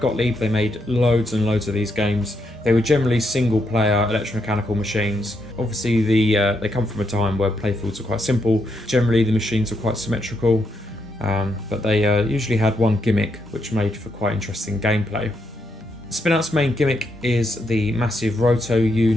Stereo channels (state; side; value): normal; both; correlation 0.79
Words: They made loads and loads of these games. They were generally single-player electromechanical machines. Obviously, they come from a time where playfields were quite simple. Generally, the machines were quite symmetrical, but they usually had one gimmick, which made for quite interesting gameplay. Spinout's main gimmick is the massive roto